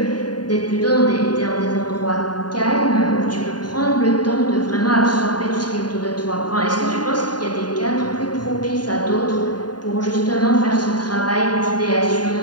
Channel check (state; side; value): late; right; 0.70 ms